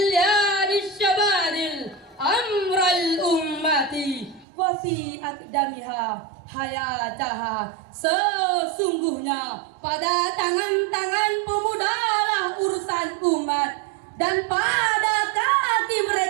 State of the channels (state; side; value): drops out; left; at 4.5 s